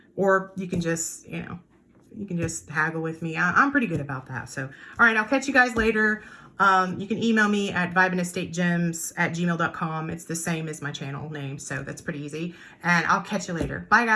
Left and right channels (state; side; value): identical; both; correlation 1.00